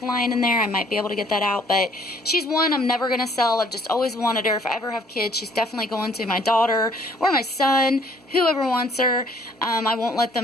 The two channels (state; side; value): normal; both; correlation 0.60